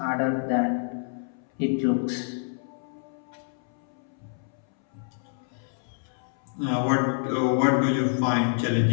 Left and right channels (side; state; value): right; silent; 60 dB below the other